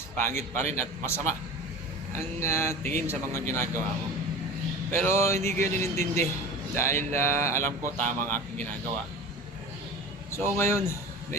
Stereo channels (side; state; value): both; normal; correlation 0.34